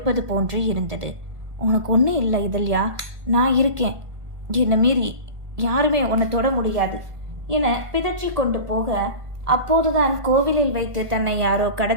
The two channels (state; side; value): late; left; 1.7 ms